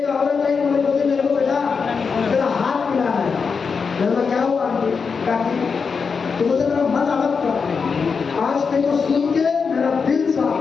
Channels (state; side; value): quieter; right; 5.5 dB